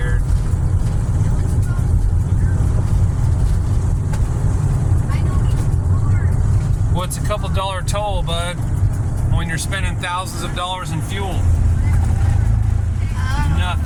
What's a couple dollar toll, bud, when you're spending thousands of dollars in fuel?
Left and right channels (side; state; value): both; identical; correlation 1.00